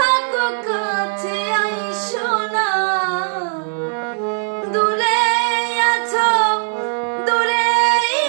কাছে আইসো না। দূরে আছো, দূরে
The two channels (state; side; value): silent; left; 64 dB below the other